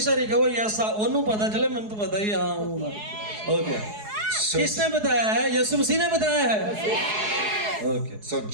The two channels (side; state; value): left; late; 4.7 ms